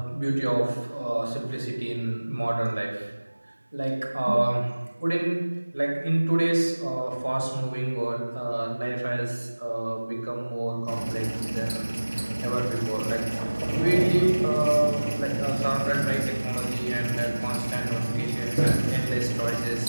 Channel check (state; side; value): inverted; both; correlation -1.00